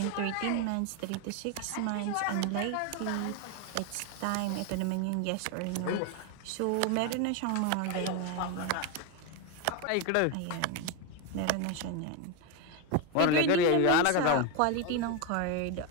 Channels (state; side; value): different; both; correlation 0.02